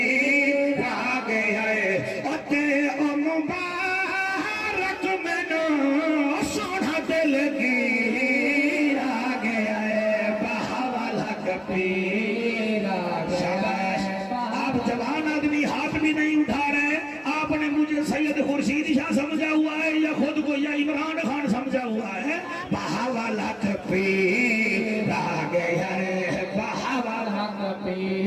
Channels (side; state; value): both; identical; correlation 1.00